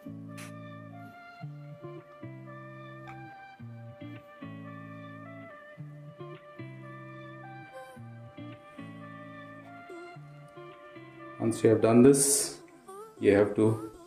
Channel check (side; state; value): both; identical; correlation 1.00